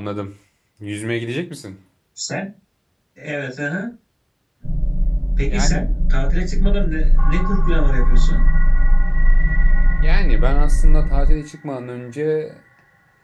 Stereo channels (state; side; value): identical; both; correlation 1.00